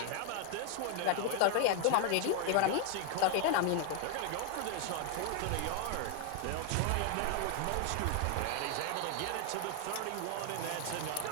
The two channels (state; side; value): different; both; correlation 0.00